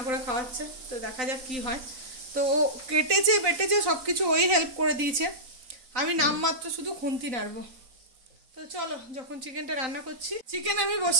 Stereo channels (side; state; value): left; late; 3.9 ms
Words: করে খাওয়াচ্ছে। তো দেখা যাক কি হয়। তো ও কেটেছে বেটেছে সব কিছু ওই হেল্প করে দিয়েছে, আমি নামমাত্র শুধু খুন্তি নাড়বো। তো চলো, যখন চিকেনটা রান্না করছি, চিকেন আমি